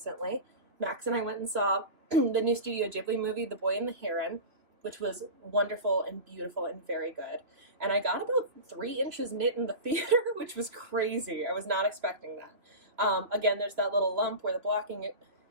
Max and I went and saw the new Studio Ghibli movie, The Boy and the Heron, which was wonderful and beautiful and very good. And I got about 3 inches knit in the theater, which was crazy. I was not expecting that. Again, there's that little lump where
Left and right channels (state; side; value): late; left; 2.9 ms